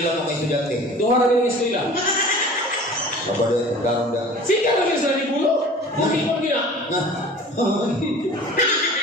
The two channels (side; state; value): both; normal; correlation 0.43